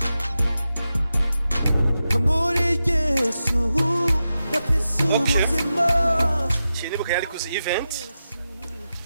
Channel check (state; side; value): inverted; both; correlation -0.90